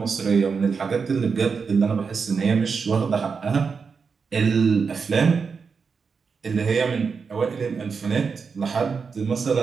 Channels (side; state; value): left; quieter; 5.4 dB